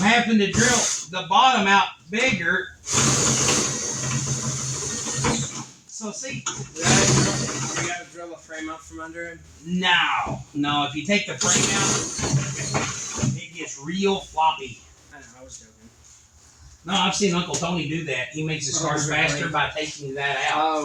having to drill the bottom out bigger. So see, You gotta drill a frame out from under him. no, if you take the frame out, it gets real floppy. I know, I was joking. No, I've seen Uncle Tony do that. He makes his cars faster by taking that out.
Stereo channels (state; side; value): identical; both; correlation 1.00